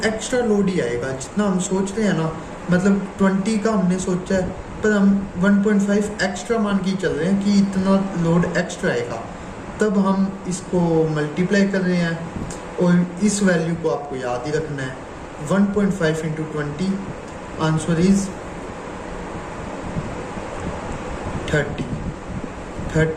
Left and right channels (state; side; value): identical; both; correlation 1.00